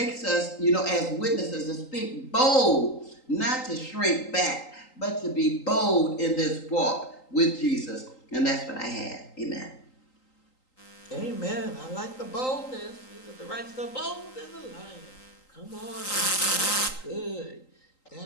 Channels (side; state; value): right; late; 3.8 ms